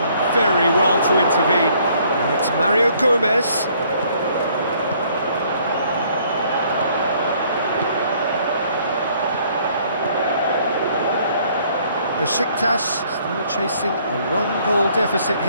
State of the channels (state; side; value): inverted; both; correlation -0.62